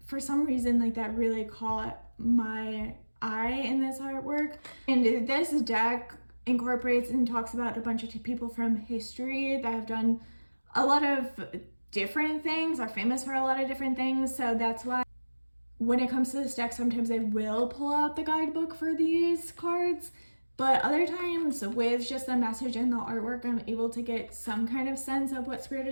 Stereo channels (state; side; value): inverted; both; correlation -1.00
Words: For some reason, like that really caught my eye in this artwork. And this deck incorporates and talks about a bunch of people from history that have done a lot of different things, are famous for a lot of different things. So that's why when it comes to this deck, sometimes I will pull out the guidebook for these cards, But other times with just the message and the artwork, I'm able to get some kind of sense of what Spirit